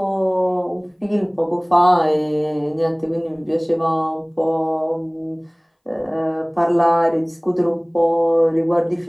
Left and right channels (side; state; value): both; identical; correlation 1.00